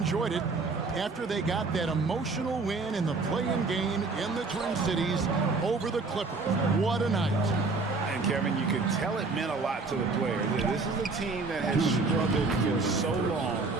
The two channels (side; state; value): left; quieter; 3.9 dB